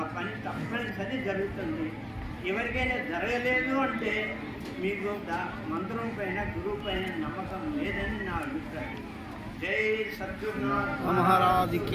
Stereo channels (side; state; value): both; identical; correlation 1.00